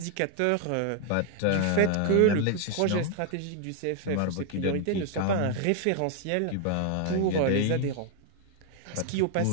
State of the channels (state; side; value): different; both; correlation 0.00